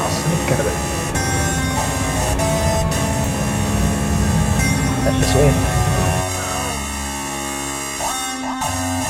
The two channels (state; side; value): identical; both; correlation 1.00